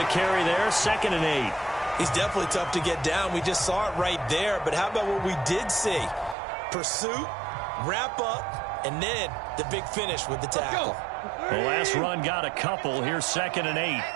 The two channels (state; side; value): drops out; left; at 6.4 s